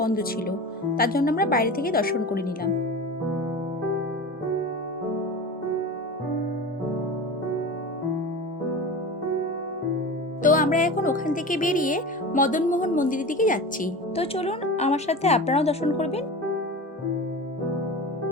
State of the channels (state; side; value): normal; both; correlation 0.31